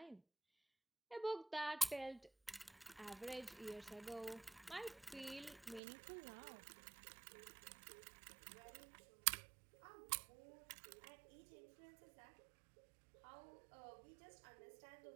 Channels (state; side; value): drops out; left; at 5.8 s